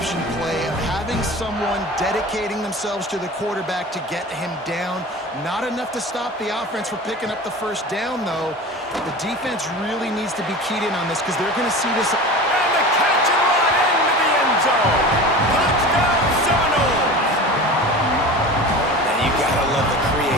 play of having someone dedicating themselves to the quarterback to get him down. Not enough to stop the offense from picking up the first down, though. The defense really needs to be keyed in on this because they're going to see this. And the catch and run into the end zone. Touchdown, Seminoles. And you got to love the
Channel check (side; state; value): both; normal; correlation 0.34